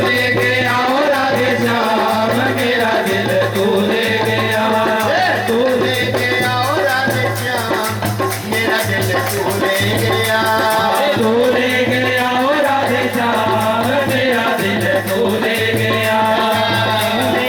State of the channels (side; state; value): both; identical; correlation 1.00